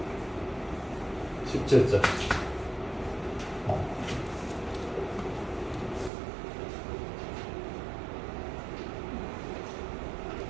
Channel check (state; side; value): drops out; left; at 6.1 s